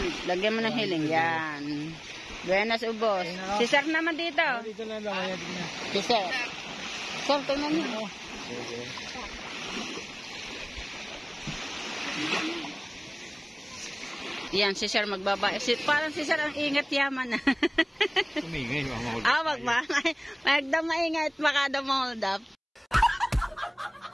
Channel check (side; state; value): both; identical; correlation 1.00